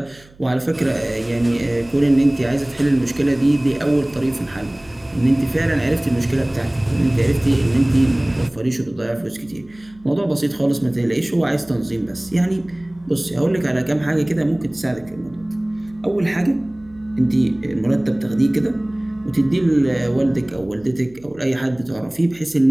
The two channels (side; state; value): right; noise; hum, 26 dB below the sound